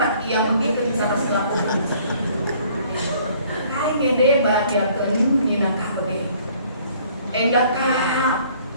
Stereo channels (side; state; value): both; inverted; correlation -0.58